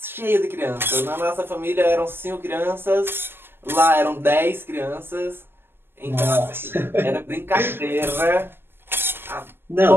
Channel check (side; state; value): left; late; 0.11 ms